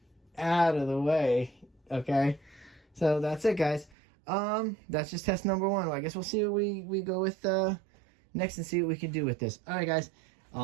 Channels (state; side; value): drops out; left; at 4.0 s